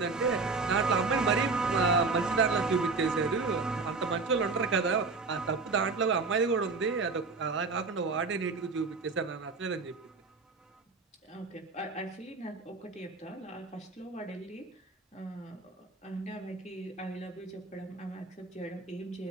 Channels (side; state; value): left; quieter; 4.1 dB